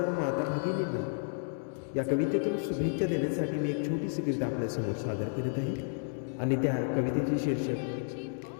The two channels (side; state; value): right; silent; digital silence